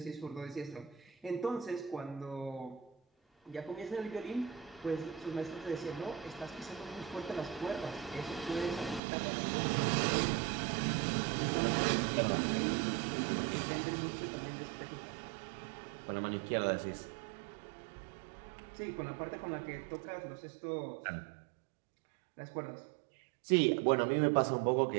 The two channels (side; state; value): left; drops out; at 9.0 s